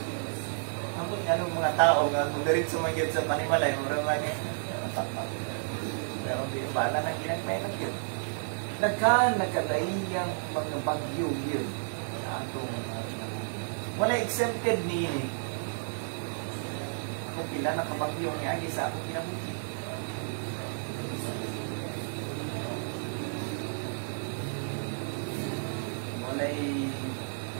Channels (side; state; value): left; silent; digital silence